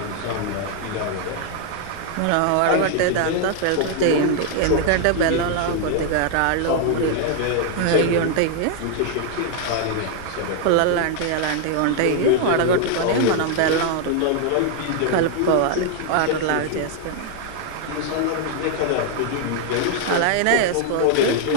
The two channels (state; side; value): different; both; correlation 0.00